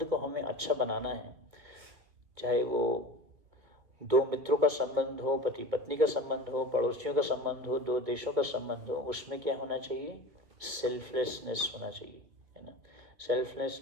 को हमें अच्छा बनाना है, चाहे वो दो मित्रों का संबंध हो, पति पत्नी का संबंध हो, पड़ोसियों का संबंध हो, दो देशों का संबंध हो, उसमें क्या होना चाहिए, सेल्फलेसनेस होना चाहिए, है ना।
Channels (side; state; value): left; late; 2.6 ms